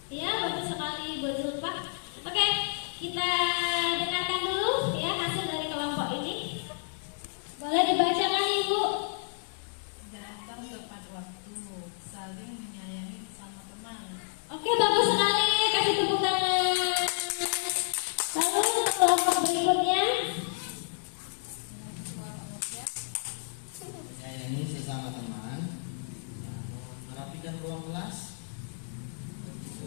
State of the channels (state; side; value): silent; right; digital silence